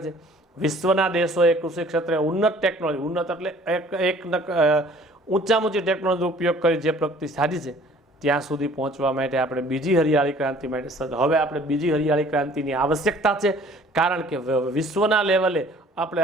છે. વિશ્વના દેશોએ કૃષિ ક્ષેત્રે ઉન્નત ટેકનોલોજી, ઉન્નત એટલે ઊંચામાં ઊંચી ટેકનોલોજીનો ઉપયોગ કરી જે પ્રગતિ સાધી છે, ત્યાં સુધી પહોંચવા માટે આપણે બીજી હરિયાળી ક્રાંતિ માટે હવે આપણે બીજી હરિયાળી ક્રાંતિની આવશ્યકતા છે. કારણ કે વિશ્વના લેવલે આપણે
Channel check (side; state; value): both; normal; correlation 0.53